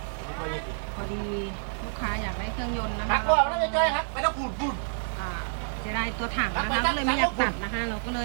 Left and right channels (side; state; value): left; silent; 59 dB below the other